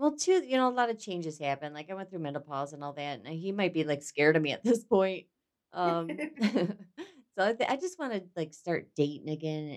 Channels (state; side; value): identical; both; correlation 1.00